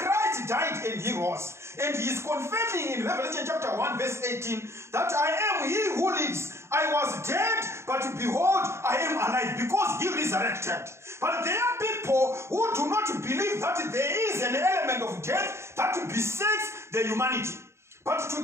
died and he rose. And he is confirming in Revelation chapter 1 verse 18 that I am he who lives. I was dead, but behold, I am alive, because he resurrected. But there are people who do not believe that there is an element of death that besets the humanity. But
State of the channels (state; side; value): late; left; 0.13 ms